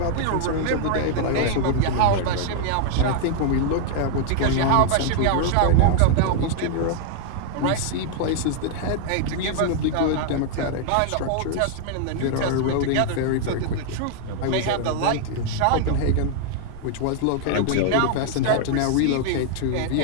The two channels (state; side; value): different; both; correlation 0.00